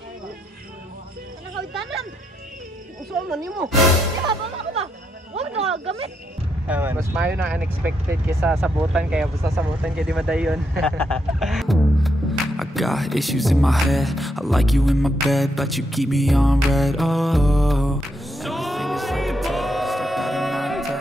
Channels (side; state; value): both; normal; correlation 0.79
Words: Ano ka itanan? Saan man mo? Diba, bala ko ba? Huwag na gamit. Mas mayo na unexpected kaysa sabutan, kaya basta sabutan kaya di madayon. I got issues in my head. I like you in my bed, but you keep me on red. Oh,